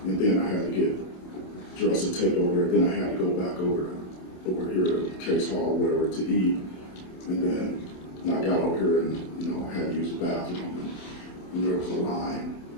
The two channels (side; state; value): right; late; 27 ms